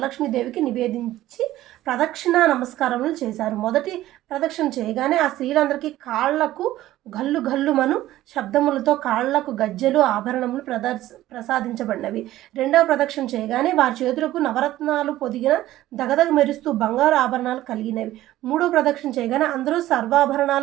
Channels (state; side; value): quieter; left; 14.9 dB